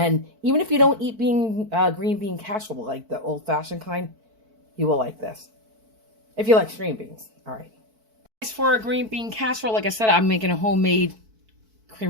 even if you don't eat green bean casserole, like the old-fashioned kind, you will like this. If you like string beans. All right. For a green bean casserole, like I said, I'm making a homemade cream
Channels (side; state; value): left; late; 4.5 ms